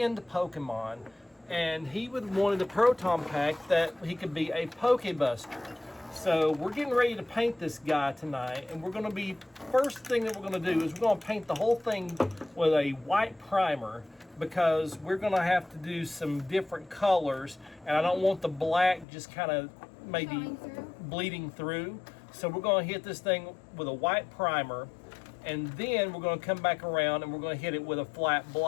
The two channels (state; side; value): drops out; right; at 19.1 s